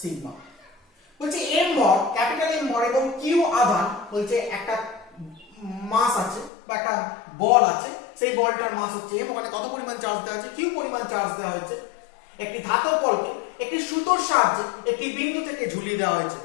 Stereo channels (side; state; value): right; drops out; at 6.5 s